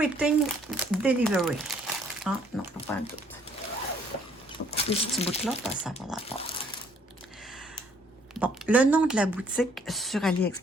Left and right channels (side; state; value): both; normal; correlation 0.63